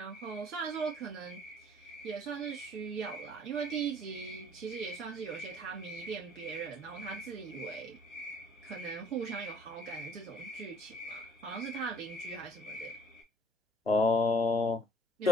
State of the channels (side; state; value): both; normal; correlation 0.58